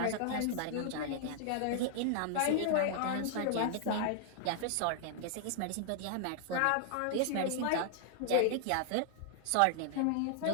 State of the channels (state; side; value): different; both; correlation 0.00